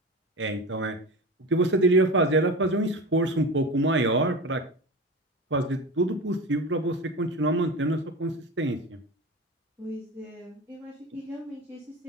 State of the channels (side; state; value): both; normal; correlation 0.28